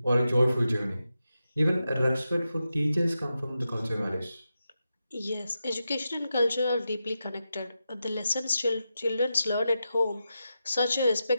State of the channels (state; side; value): inverted; both; correlation -0.89